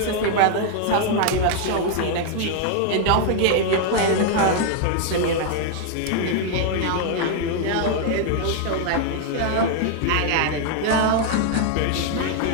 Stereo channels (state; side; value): different; both; correlation 0.00